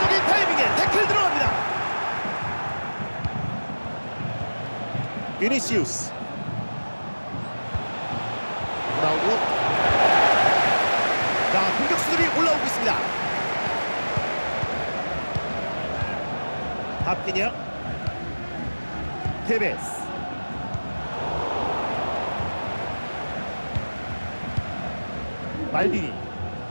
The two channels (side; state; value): both; inverted; correlation -1.00